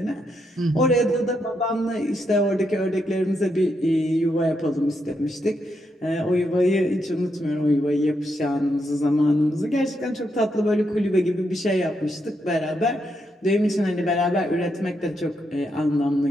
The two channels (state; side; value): normal; both; correlation 0.80